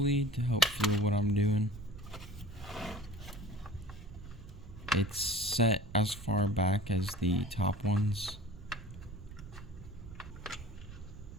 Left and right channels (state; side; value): noise; right; rumble, 14 dB below the sound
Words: to help feel what I'm doing. It's set as far back as the top ones.